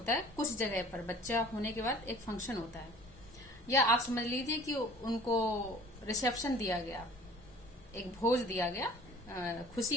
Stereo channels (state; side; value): normal; both; correlation 0.49